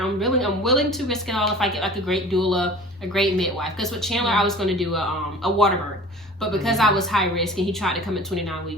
I'm willing to risk it all if I get like a great doula, a great midwife. Because with Chandler, I was going to do a water birth. But because I was high risk and he tried to come at 29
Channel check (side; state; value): both; normal; correlation 0.43